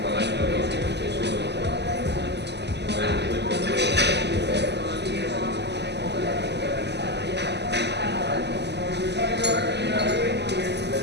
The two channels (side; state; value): left; late; 0.50 ms